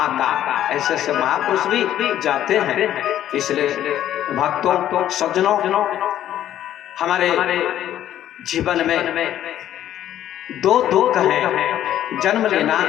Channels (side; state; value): right; quieter; 11.7 dB